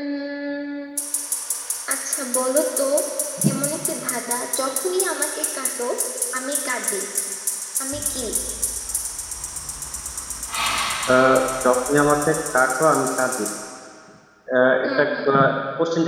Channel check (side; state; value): both; identical; correlation 1.00